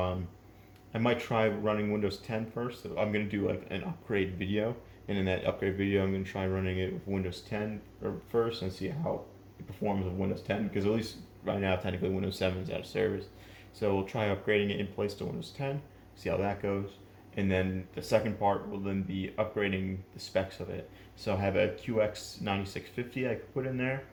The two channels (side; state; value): both; identical; correlation 1.00